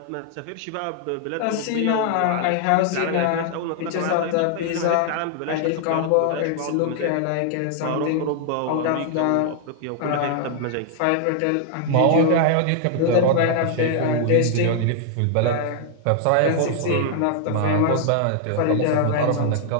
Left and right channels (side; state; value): both; different; correlation 0.00